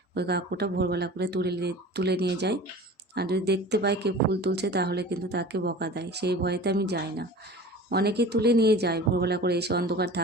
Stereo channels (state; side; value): normal; both; correlation 0.39